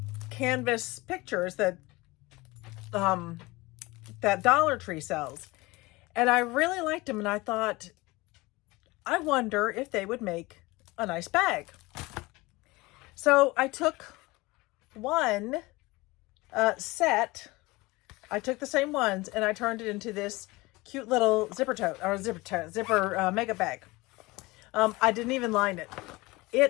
canvas pictures that that Dollar Tree sells, and I really liked them, and I thought, I wonder if they would make a nice bag. So I took one set, I took the same ones, and I turned it into this cute little zipper mega bag. I didn't even line it.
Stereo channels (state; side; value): quieter; right; 22.1 dB